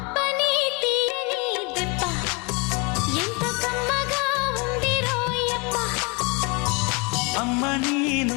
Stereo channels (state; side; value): quieter; right; 28.6 dB